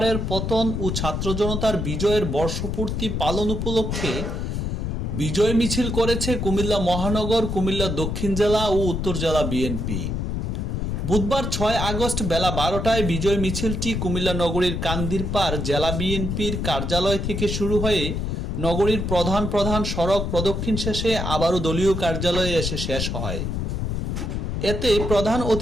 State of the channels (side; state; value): left; noise; rumble, 2 dB below the sound